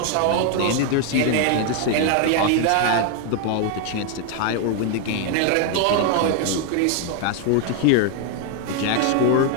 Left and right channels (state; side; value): different; both; correlation 0.00